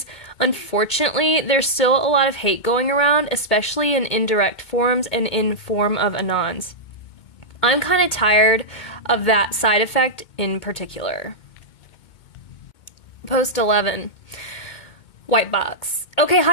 Unfortunately, there's still a lot of hate going around, especially in indirect forums and in form of anons. I'm kind of tired of that side effect in particular. Post 11. Whitebox. Okay,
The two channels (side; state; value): right; late; 2.2 ms